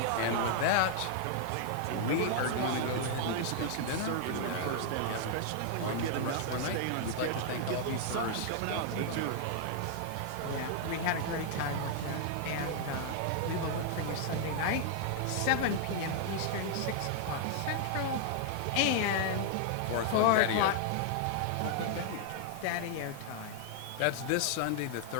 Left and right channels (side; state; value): both; different; correlation 0.00